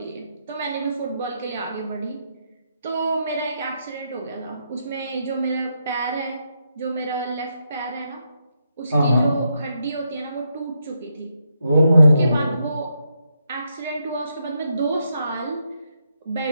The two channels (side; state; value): both; inverted; correlation -0.80